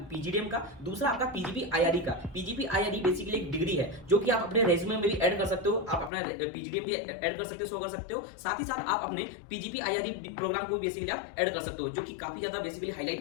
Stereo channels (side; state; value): right; drops out; at 6.1 s